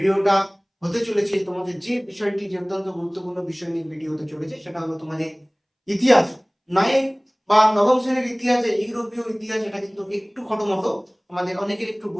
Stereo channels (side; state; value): both; identical; correlation 1.00